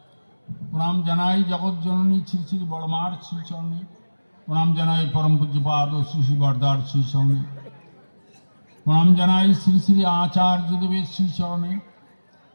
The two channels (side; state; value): both; inverted; correlation -1.00